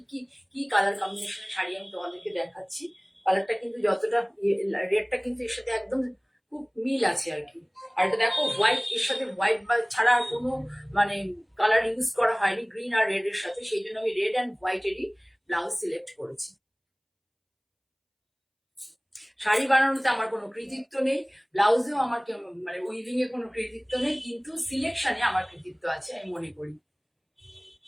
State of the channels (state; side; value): identical; both; correlation 1.00